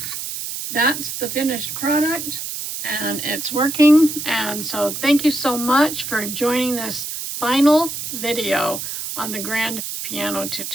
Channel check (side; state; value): right; noise; hiss, 6 dB below the sound